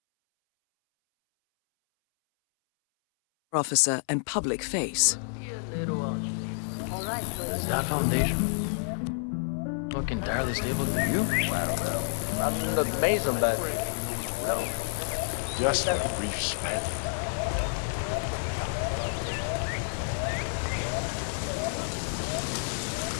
Officer and public face. That foundation. Look entirely stable to you. Well, not in the mason, but well, Just a brief spell.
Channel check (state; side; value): silent; right; 59 dB below the other